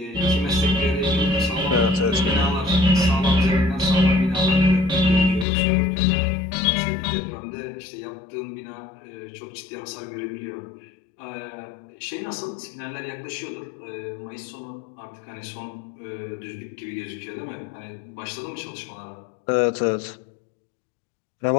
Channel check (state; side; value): drops out; right; at 5.5 s